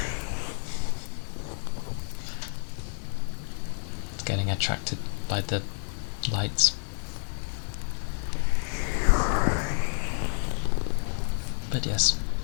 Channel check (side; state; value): right; silent; 56 dB below the other